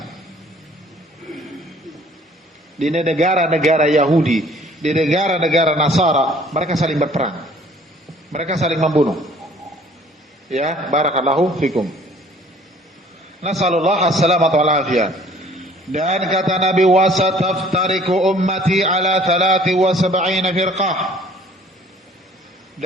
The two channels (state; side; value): normal; both; correlation 0.54